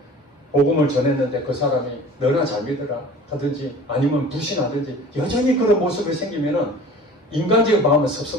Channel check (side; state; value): both; normal; correlation 0.43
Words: 복음을 전했는데 그 사람이 너나 잘 믿으라 하든지 아니면 불신하든지 여전히 그런 모습이 생기면은 인간적인 마음은